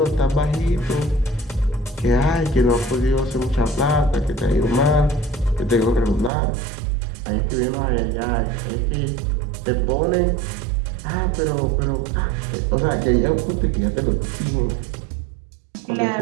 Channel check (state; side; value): drops out; left; at 6.3 s